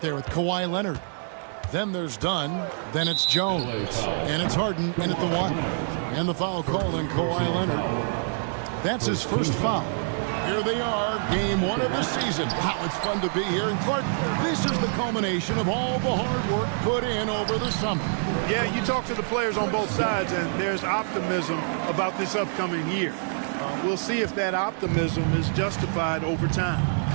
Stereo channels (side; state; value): left; silent; digital silence